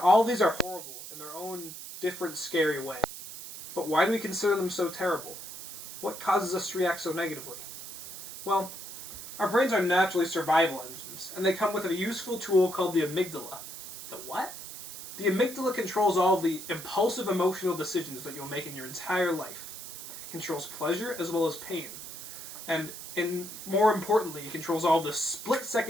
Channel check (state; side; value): noise; right; hiss, 11 dB below the sound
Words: all of these are horrible in their own different, scary way. But why do we consider them so terrible? What causes us to react so negatively? Well, our brains are naturally survival engines, and they come with a useful tool called the amygdala. The what? The amygdala controls all of the impulsive emotional decisions that you'll make in your entire life. It controls pleasure as well as pain. And more importantly, it controls all the